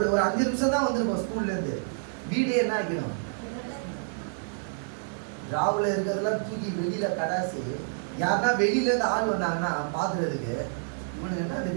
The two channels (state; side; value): silent; left; digital silence